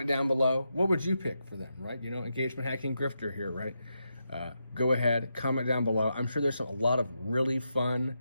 down below. What would you pick for them, right? You know, engagement hacking grifter here, right? Go ahead, comment down below. I'm sure there's a lot of really fun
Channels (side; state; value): both; inverted; correlation -0.85